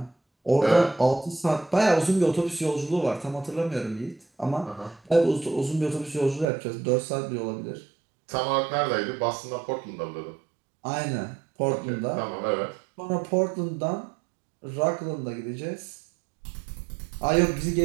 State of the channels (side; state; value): left; drops out; at 6.5 s